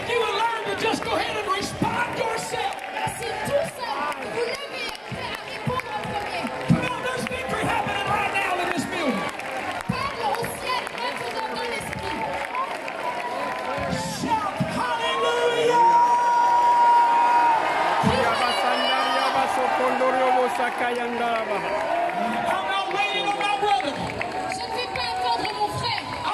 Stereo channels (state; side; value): identical; both; correlation 1.00